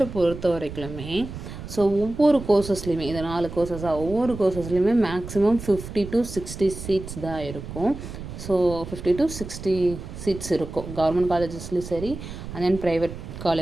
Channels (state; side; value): noise; right; rumble, 10 dB below the sound